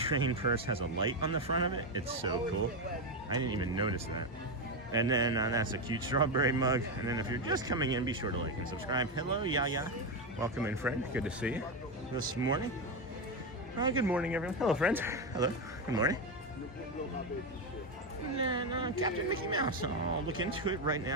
purse has a light on the front of it. It's so cool. I didn't even notice that. And then that's a cute strawberry mug. And then if you're just coming in, be sure to like and subscribe. Hello, Yaya. Welcome in, friend. Good to see you this morning. Good morning, everyone. Hello, friends. Hello. Good morning. And then Captain Mickey Mouse. I'll look into it right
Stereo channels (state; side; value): normal; both; correlation 0.10